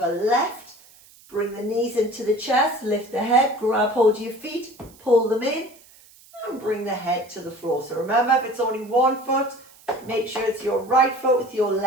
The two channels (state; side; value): noise; right; hiss, 25 dB below the sound